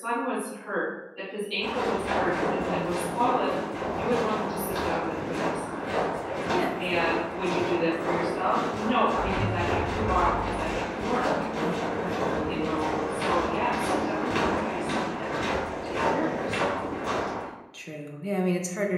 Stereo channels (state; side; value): identical; both; correlation 1.00